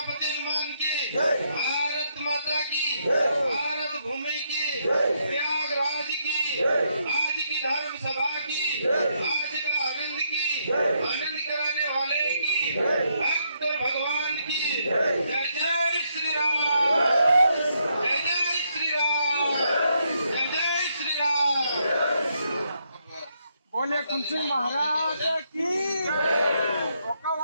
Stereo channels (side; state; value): both; inverted; correlation -0.76